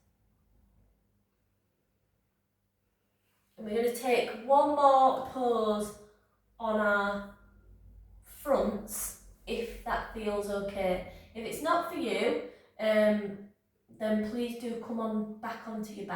And we're going to take one more pose on our fronts, if that feels okay. If it's not for you, then please do come on back onto your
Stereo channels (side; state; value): both; identical; correlation 1.00